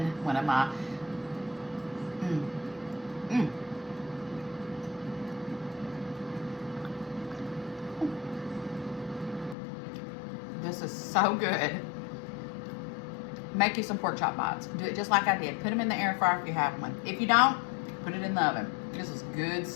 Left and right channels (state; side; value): drops out; right; at 9.6 s